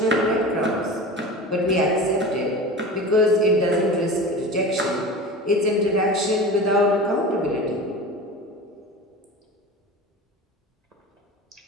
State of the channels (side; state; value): both; normal; correlation 0.33